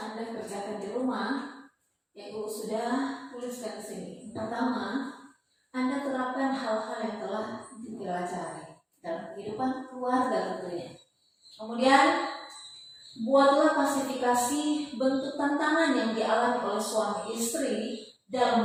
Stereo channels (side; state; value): both; identical; correlation 1.00